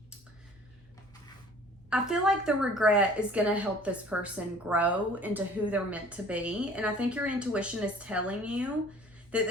I feel like the regret is going to help this person grow into who they're meant to be. And I think your intuition is telling you that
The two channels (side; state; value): both; normal; correlation 0.50